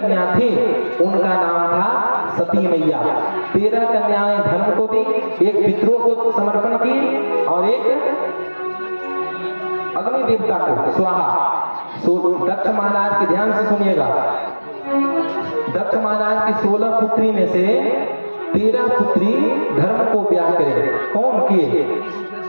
थी उनका नाम था सती मैया। 13 कन्याएं धर्म को दी, एक पितरों को समर्पण की और एक अग्नि देवता को स्वाहा। दक्ष महाराज के ध्यान से सुनिएगा, दक्ष महाराज की 16 पुत्री में से 13 पुत्री धर्म को ब्याह करे। कौन किए?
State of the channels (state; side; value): inverted; both; correlation -1.00